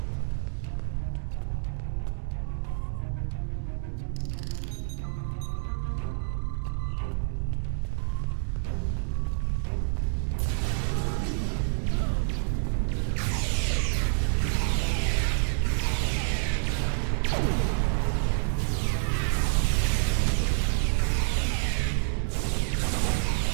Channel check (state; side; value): silent; left; digital silence